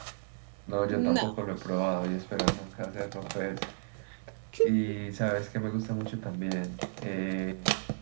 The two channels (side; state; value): left; silent; 56 dB below the other